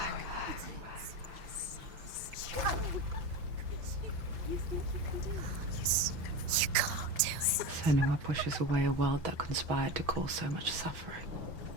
You can't do it. Senua pushes away a world that conspired to cause so much suffering.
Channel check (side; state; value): left; late; 5.9 ms